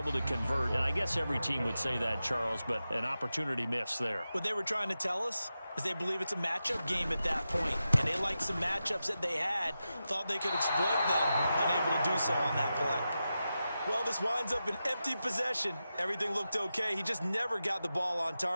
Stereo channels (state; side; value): inverted; both; correlation -0.91